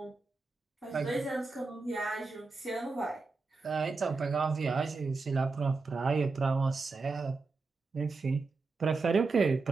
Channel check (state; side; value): quieter; left; 4.1 dB